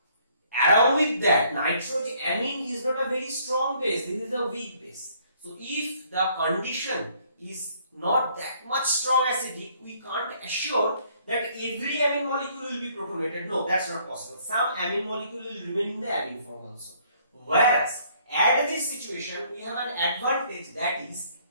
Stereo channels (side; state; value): both; inverted; correlation -0.63